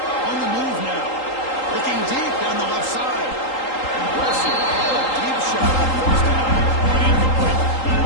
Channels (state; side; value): late; right; 3.8 ms